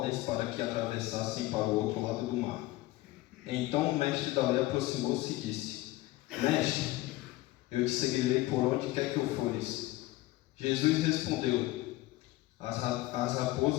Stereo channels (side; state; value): right; quieter; 18.2 dB